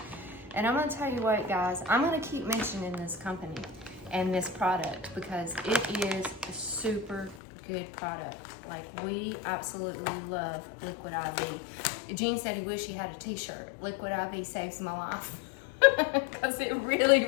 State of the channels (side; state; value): right; drops out; at 7.4 s